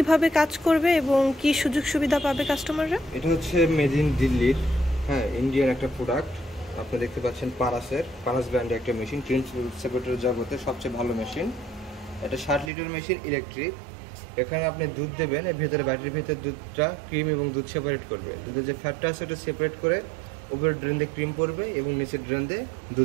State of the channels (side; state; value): left; drops out; at 12.7 s